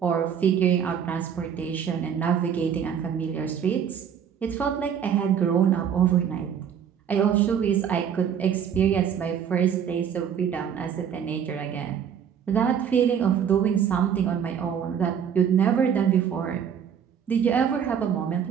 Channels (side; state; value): left; quieter; 8.2 dB